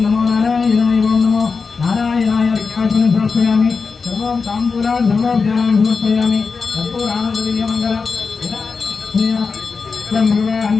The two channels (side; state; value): right; quieter; 4.9 dB